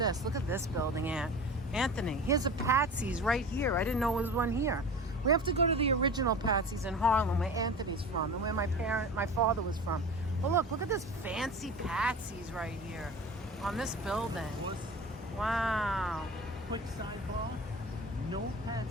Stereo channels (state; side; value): normal; both; correlation 0.34